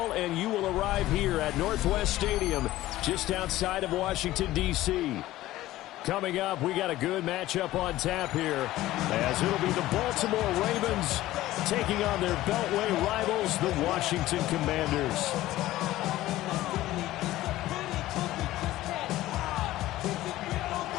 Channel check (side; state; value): right; quieter; 15.8 dB